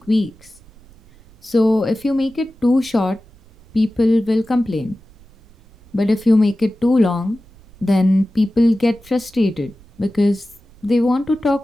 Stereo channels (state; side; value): noise; right; rumble, 26 dB below the sound